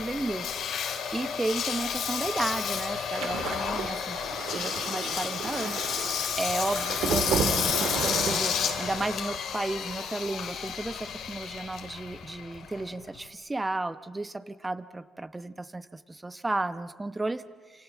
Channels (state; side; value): normal; both; correlation 0.75